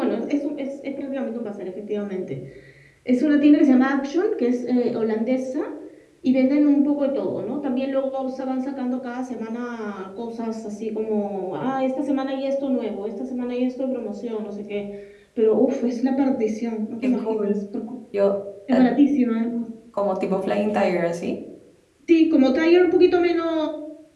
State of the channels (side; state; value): both; identical; correlation 1.00